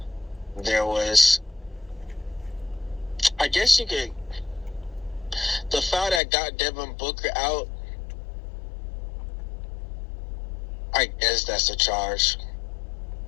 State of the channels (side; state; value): right; drops out; at 6.2 s